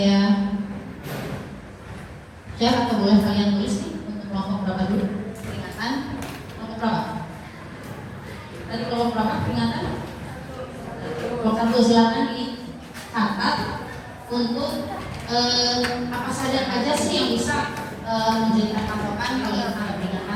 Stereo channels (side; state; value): both; identical; correlation 1.00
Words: share atau boleh kalian tulis nih untuk kelompok berapa dulu peringatan, kelompok berapa? Tadi kelompok berapa peringatan? Kelompok 1 silakan dicatat untuk apa saja sih yang bisa menjadikan patokan kalau kita ada